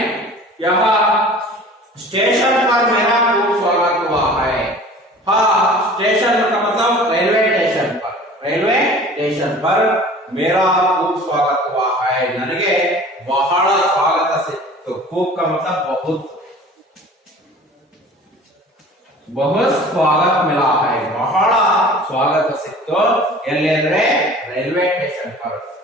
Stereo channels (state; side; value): normal; both; correlation 0.44